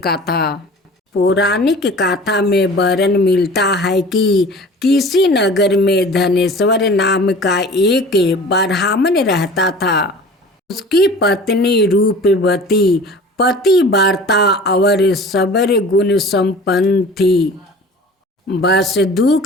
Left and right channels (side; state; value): both; normal; correlation 0.42